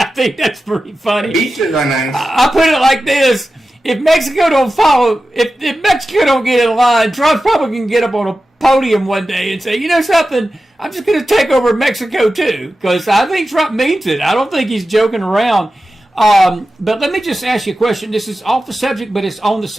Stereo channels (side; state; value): both; normal; correlation 0.93